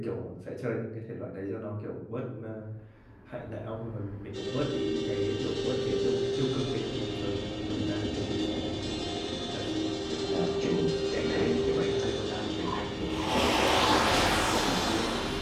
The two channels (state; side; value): identical; both; correlation 1.00